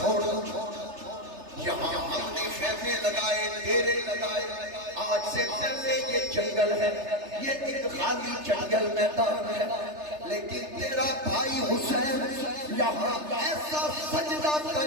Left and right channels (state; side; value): late; left; 3.3 ms